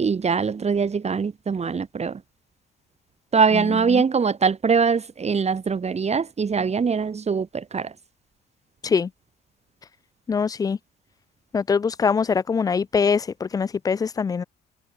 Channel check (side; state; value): both; normal; correlation 0.48